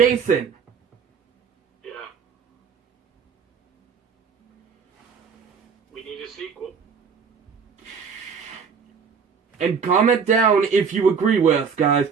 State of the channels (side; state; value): left; quieter; 6.1 dB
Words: Yeah. We need a sequel. And comment down if you agree with us, guys.